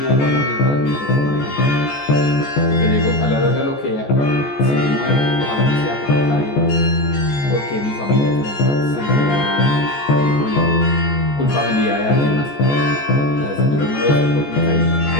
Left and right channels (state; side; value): late; right; 14 ms